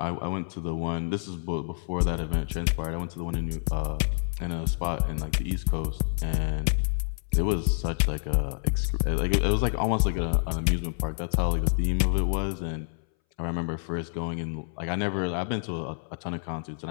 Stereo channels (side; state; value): right; silent; 59 dB below the other